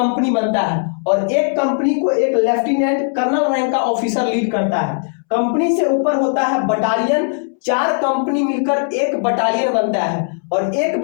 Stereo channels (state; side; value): silent; right; 68 dB below the other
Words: बनता है और एक कंपनी को एक लेफ्टिनेंट कर्नल रैंक का ऑफिसर लीड करता है। कंपनी से ऊपर होता है बटालियन। 4 कंपनी मिलकर एक बटालियन बनता है और एक